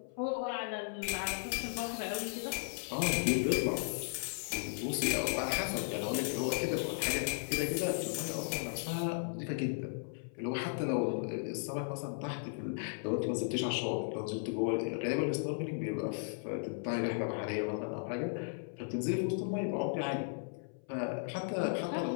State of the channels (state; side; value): silent; right; 54 dB below the other